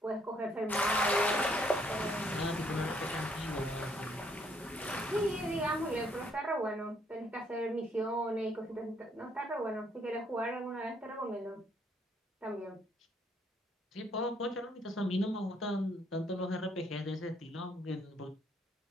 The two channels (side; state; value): both; normal; correlation 0.68